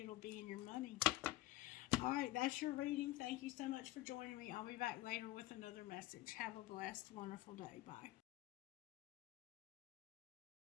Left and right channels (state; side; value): quieter; right; 16.8 dB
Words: be in your money. All right, that's your reading. Thank you so much for joining me. I'll be back later with another message. Have a blessed, wonderful day. Bye.